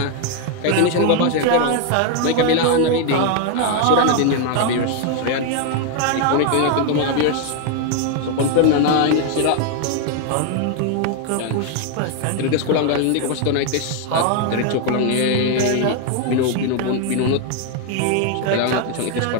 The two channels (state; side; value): different; both; correlation 0.00